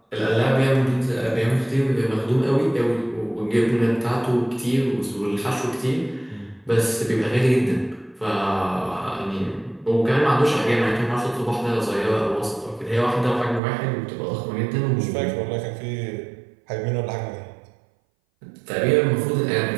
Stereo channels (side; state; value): left; drops out; at 13.6 s